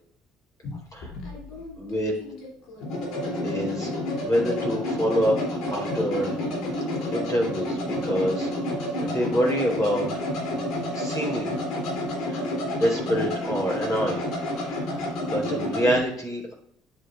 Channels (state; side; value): normal; both; correlation 0.65